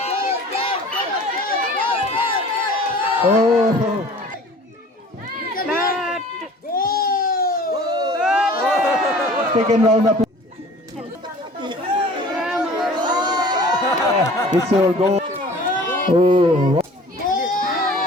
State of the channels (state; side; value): normal; both; correlation 0.46